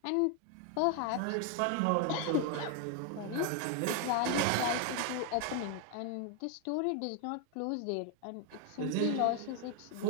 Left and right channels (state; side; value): different; both; correlation 0.01